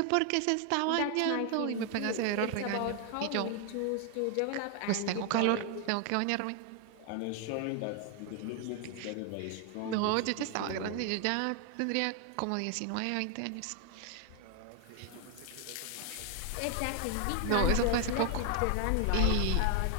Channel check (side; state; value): both; different; correlation 0.00